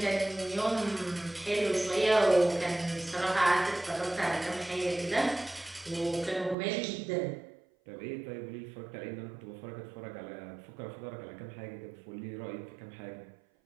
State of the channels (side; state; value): left; drops out; at 6.6 s